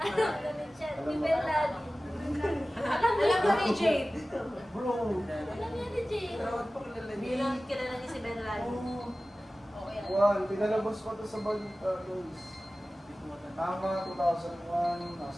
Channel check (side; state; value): both; normal; correlation 0.96